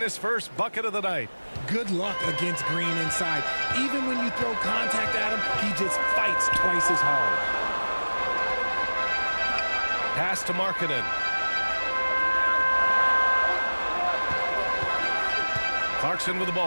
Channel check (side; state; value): both; inverted; correlation -1.00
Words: his first bucket of the night. Good luck against Green inside. Even when you throw contact at him, he just fights twice as hard. Pass to Markkanen. Clarkson with the